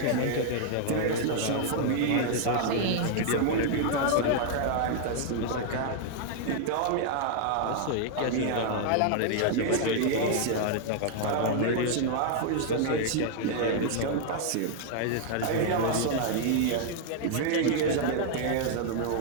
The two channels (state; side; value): different; both; correlation 0.00